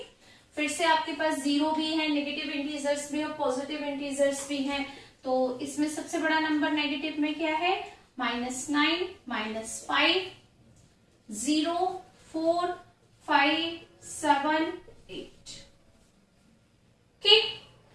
फिर से आपके पास 0 भी है, नेगेटिव इंटीजर्स भी और पॉजिटिव इंटीजर्स भी हैं। तो इसमें सबसे बड़ा नंबर नेगेटिव में क्या है, -9, -5, 0, 4, 5, 7, 8। Okay,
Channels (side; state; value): both; identical; correlation 1.00